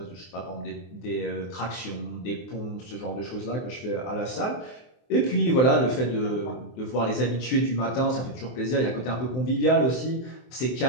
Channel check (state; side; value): late; right; 23 ms